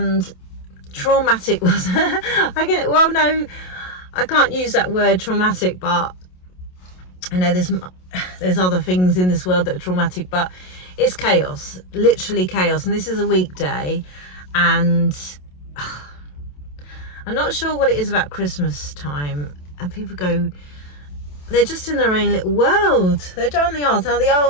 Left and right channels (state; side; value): late; right; 27 ms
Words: traumatic was no, I can't use that word traumatic, but I know there's other things in this world that are traumatic, but it's chaos, literally chaos. And this is a weekday, and I'm not sure what it is about Christmas time, and people go, they're just in their own little world. They're down the aisles. Now the